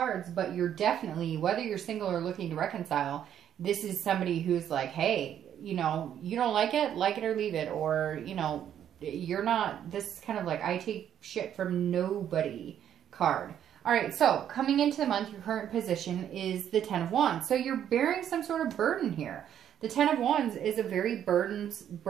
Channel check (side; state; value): left; quieter; 9.9 dB